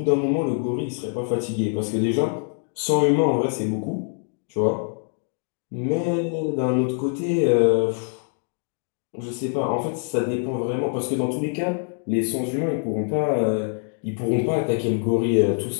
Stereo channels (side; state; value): right; silent; 55 dB below the other